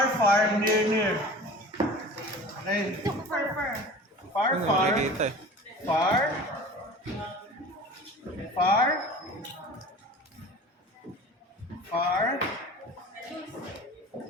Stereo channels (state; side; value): normal; both; correlation 0.39